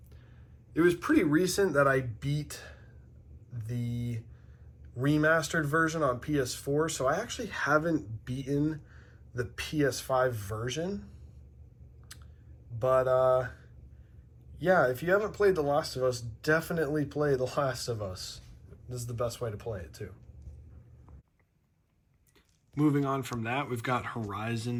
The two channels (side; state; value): both; identical; correlation 1.00